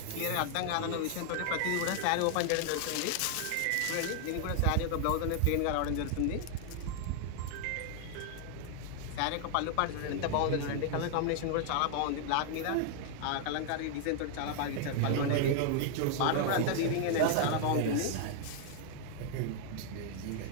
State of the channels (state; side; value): different; both; correlation 0.00